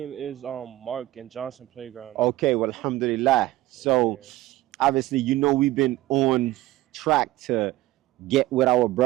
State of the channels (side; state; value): left; quieter; 17.0 dB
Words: is Mark and Johnson Playground. Okay, well, alhamdulillah. So obviously, you know, we've been on track to get with our